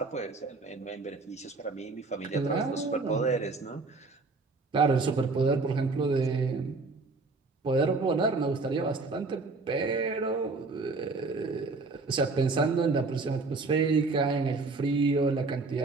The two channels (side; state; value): left; quieter; 3.8 dB